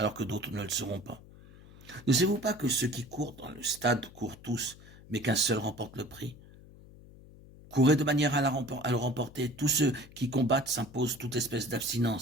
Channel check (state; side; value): noise; left; hum, 21 dB below the sound